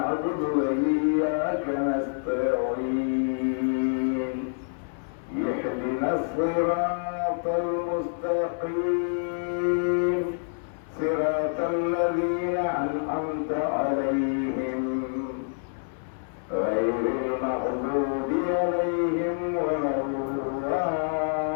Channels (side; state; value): right; silent; digital silence